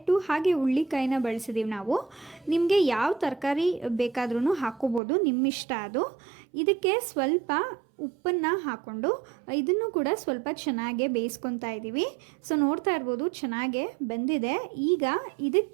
ಹಾಗೆ ಹುಳ್ಳಿಕಾಯಿನ ಬಳಸಿದ್ದೀವಿ ನಾವು. ನಿಮಗೆ ಯಾವ ತರಕಾರಿ ಬೇಕಾದ್ರೂ ಹಾಕ್ಕೋಬೋದು, ನಿಮ್ಮಿಷ್ಟ ಅದು. ಇದಕ್ಕೆ ಸ್ವಲ್ಪ ಉಪ್ಪನ್ನು ಹಾಕ್ಕೊಂಡು ಇದನ್ನು ಕೂಡ ಸ್ವಲ್ಪ ಚೆನ್ನಾಗೆ ಬೇಯಿಸ್ಕೊತಾ ಇದ್ದೀವಿ. ಸೊ ನೋಡ್ತಾ ಇರ್ಬೋದು ಚೆನ್ನಾಗೆ ಬೆಂದಿದೆ. ಈಗ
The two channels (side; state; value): left; drops out; at 5.0 s